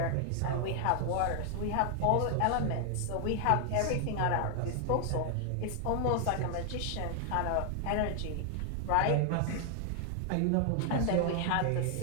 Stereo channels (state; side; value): different; both; correlation 0.00